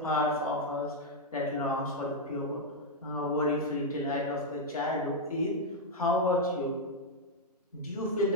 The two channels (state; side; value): normal; both; correlation -0.01